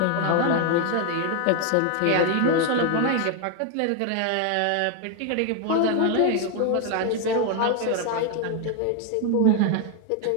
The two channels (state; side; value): different; both; correlation 0.01